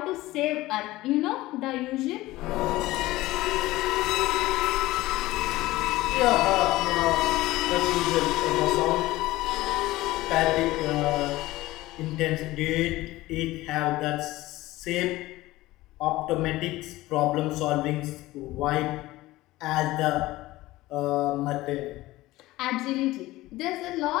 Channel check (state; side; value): quieter; right; 18.0 dB